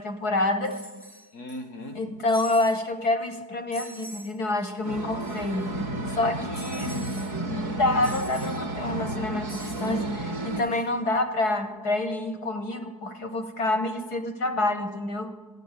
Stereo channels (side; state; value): right; late; 4.7 ms